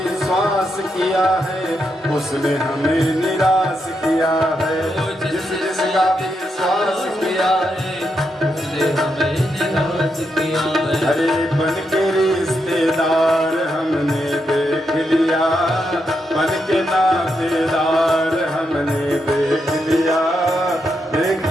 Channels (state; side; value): normal; both; correlation 0.82